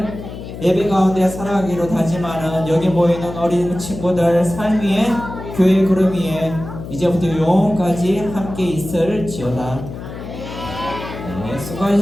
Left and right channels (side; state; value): left; noise; hum, 11 dB below the sound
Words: 예배 가운데 살아가기로 다짐하는 여기 모이는 어린 친구들 삶 위에 교회 구름 위에 이제부터 영원까지 함께 있을지어다. 네,